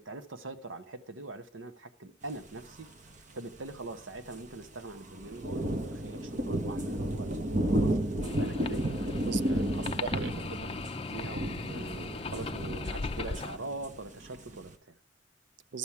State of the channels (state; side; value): normal; both; correlation 0.61